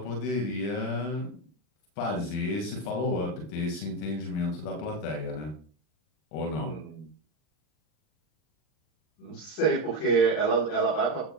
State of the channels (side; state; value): right; late; 39 ms